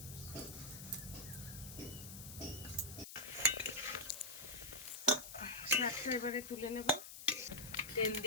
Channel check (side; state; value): left; noise; hiss, 11 dB below the sound